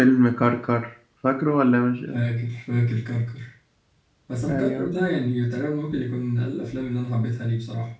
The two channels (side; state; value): both; identical; correlation 1.00